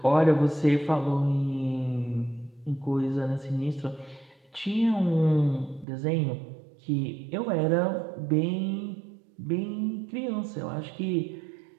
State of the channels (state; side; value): drops out; left; at 5.9 s